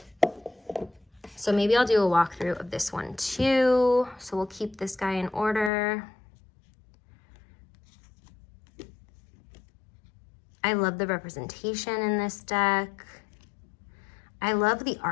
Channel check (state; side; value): drops out; right; at 5.7 s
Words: So maybe I'll do a walkthrough of this one too. So we'll keep this guy in order. I love the representation in this deck. I love the